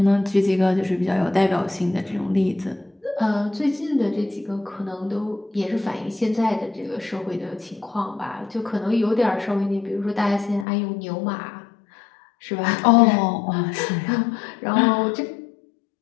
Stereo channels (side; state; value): right; drops out; at 10.7 s